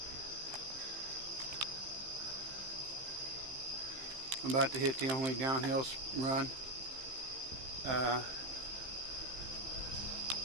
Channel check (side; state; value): left; late; 15 ms